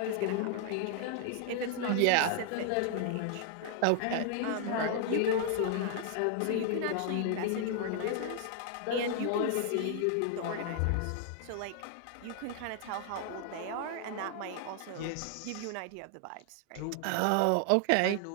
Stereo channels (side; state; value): both; different; correlation 0.00